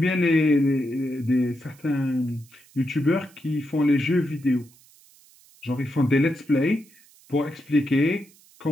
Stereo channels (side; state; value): right; noise; hiss, 28 dB below the sound